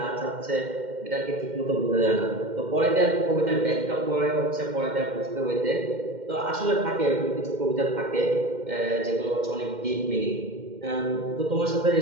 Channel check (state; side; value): late; left; 2.1 ms